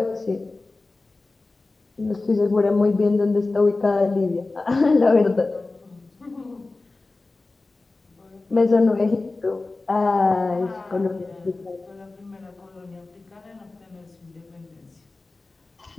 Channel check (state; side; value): quieter; right; 3.4 dB